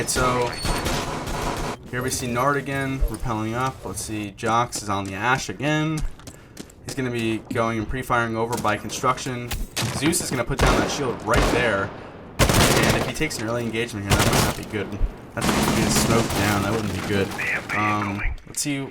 so here we see Nard again, repelling up. Let's see, Jox is on the Ash again. He's going to be going and pre-firing over by construction. Zeus is going to put down that shield right there. And if he takes an early engagement here, that might not be good. That's if he gets smoked down, that wouldn't be good. Let's see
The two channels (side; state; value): both; identical; correlation 1.00